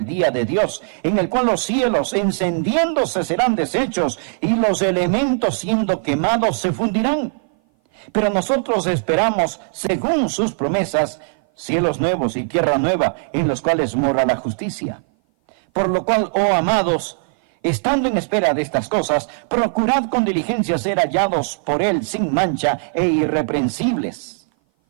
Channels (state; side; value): silent; left; 57 dB below the other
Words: día de Dios, en el cual los cielos encendiéndose serán deshechos, y los elementos siendo quemados se fundirán? Pero nosotros esperamos, según sus promesas, cielos nuevos y tierra nueva, en los cuales mora la justicia. Por lo cual, oh amados, estando en espera de estas cosas, procurad con diligencia ser hallados por Él sin mancha e irreprensibles,